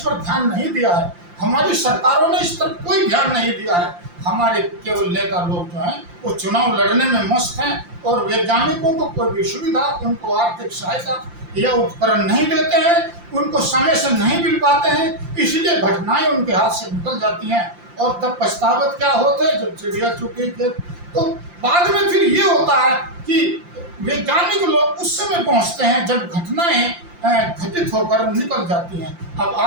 ध्यान नहीं दिया है, हमारी सरकारों ने इस पर कोई ध्यान नहीं दिया है। हमारे केवल नेता लोग जो हैं वो चुनाव लड़ने में मस्त हैं और वैज्ञानिकों को कोई भी सुविधा, उनको आर्थिक सहायता या उपकरण नहीं देते हैं, उनको समय से नहीं मिल पाते हैं, इसलिए घटनाएं उनके हाथ से निकल जाती हैं और तब पछतावत क्या होते हैं, जब चिड़िया चुकी थे। तो बाद में फिर ये होता है कि वैज्ञानिक लोग उस समय पहुंचते हैं जब घटनाएं घटित होकर निकल जाती हैं। अब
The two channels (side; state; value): left; late; 5.7 ms